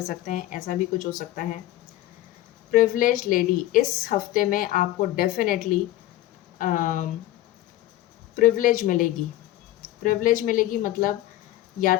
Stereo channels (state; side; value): quieter; right; 15.0 dB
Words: सकते हैं, ऐसा भी कुछ हो सकता है। प्रिविलेज्ड लेडी, इस हफ्ते में आपको डेफिनेटली प्रिविलेज मिलेगी। प्रिविलेज मिलेगी मतलब या